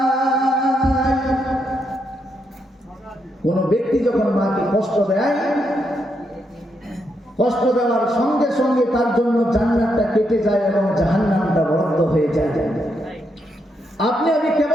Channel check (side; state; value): both; normal; correlation 0.80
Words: কোন ব্যক্তি যখন মাকে কষ্ট দেয়, কষ্ট দেওয়ার সঙ্গে সঙ্গে তার জন্য জান্নাতটা কেটে যায় এবং জাহান্নামটা বদ্ধ হয়ে যায়। আপনি আমি